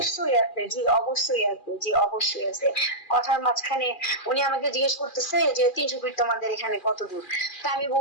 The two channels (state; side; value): late; right; 2.4 ms